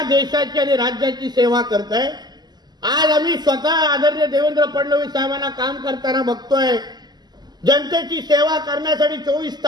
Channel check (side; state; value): left; late; 0.20 ms